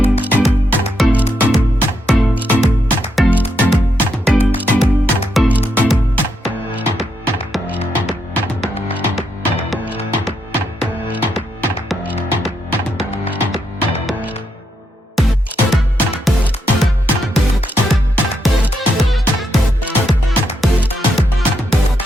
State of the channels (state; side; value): normal; both; correlation 0.80